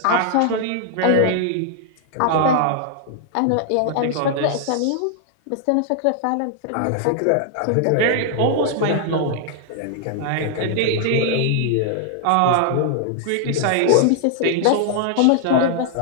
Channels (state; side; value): different; both; correlation 0.00